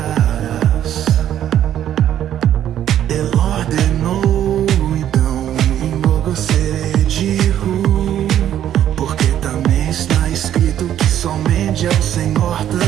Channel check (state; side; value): quieter; left; 11.0 dB